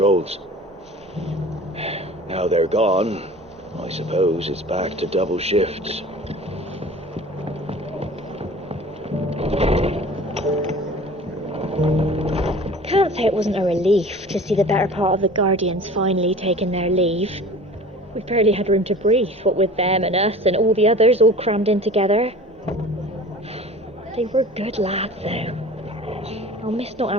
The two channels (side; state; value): both; normal; correlation 0.42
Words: Now they're gone, I suppose it's back to double shifts. Can't say it wasn't a relief to see the better part of the Guardians finally taking their leave. We barely had room to breathe, what with them and us and all the others all crammed in together. They were good lads, though. I'll miss not